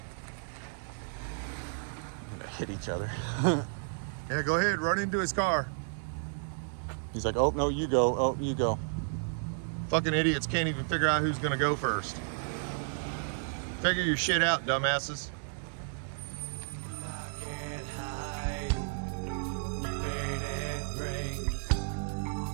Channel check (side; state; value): left; silent; digital silence